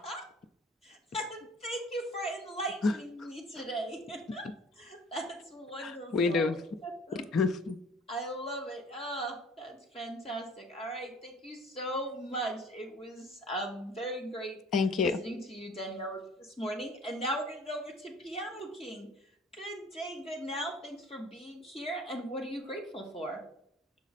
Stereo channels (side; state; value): both; normal; correlation 0.50